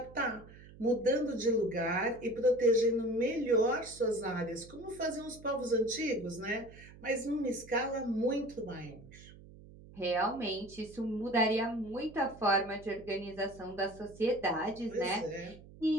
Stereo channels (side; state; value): right; noise; hum, 19 dB below the sound